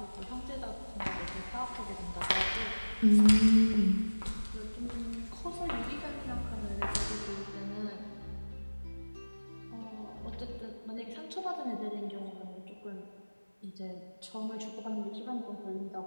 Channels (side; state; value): both; inverted; correlation -1.00